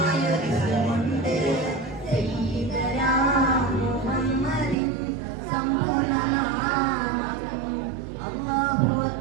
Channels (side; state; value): left; drops out; at 4.8 s